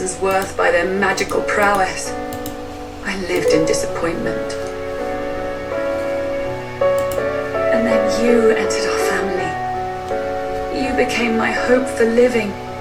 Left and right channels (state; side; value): identical; both; correlation 1.00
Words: worth by their magical prowess. I lived in disappointment. And then you entered our family. You became my hope for living.